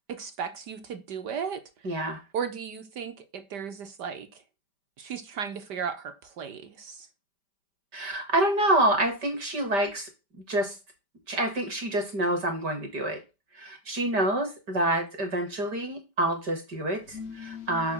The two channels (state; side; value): late; left; 5.1 ms